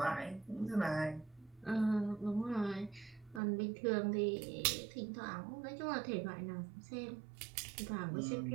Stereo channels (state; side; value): drops out; left; at 3.4 s